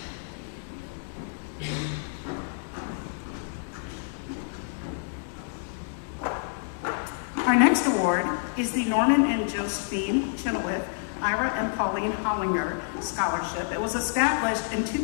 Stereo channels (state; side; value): silent; right; digital silence